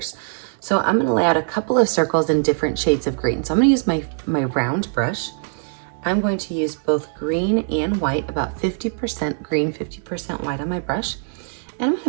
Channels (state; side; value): silent; left; digital silence